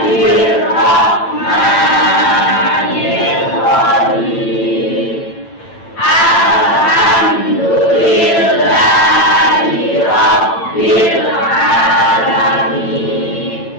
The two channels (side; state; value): right; late; 8.9 ms